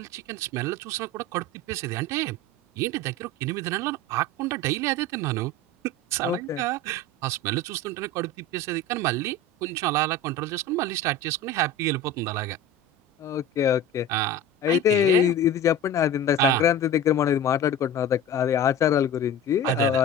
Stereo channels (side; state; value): both; normal; correlation 0.32